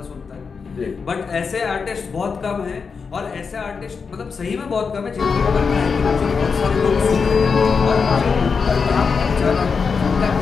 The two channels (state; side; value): quieter; right; 5.4 dB